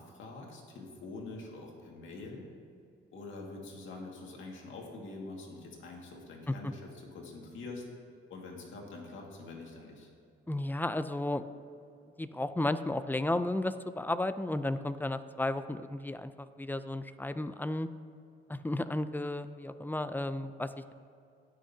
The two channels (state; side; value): normal; both; correlation 0.87